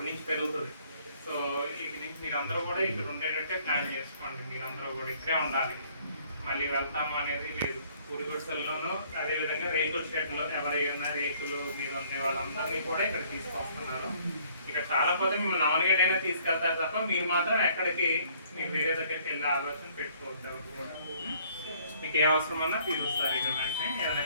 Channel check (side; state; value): both; inverted; correlation -0.61